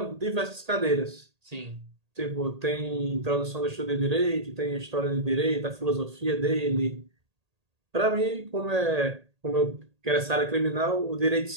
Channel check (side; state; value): left; late; 1.8 ms